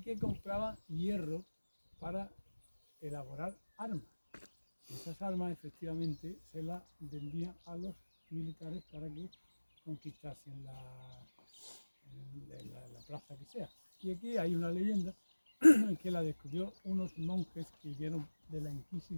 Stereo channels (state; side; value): inverted; both; correlation -1.00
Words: que compraban hierro para elaborar armas. Esas armas efectivamente se las vendían a los militares para que conquistasen la plaza que sea. Y aquí hay una leyenda que la descubrió unos monjes que vieron de la